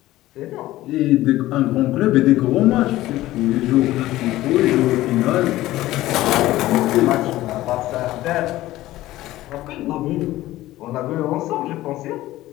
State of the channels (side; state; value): right; quieter; 16.1 dB